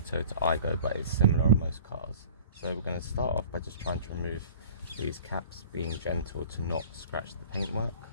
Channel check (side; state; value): both; inverted; correlation -0.45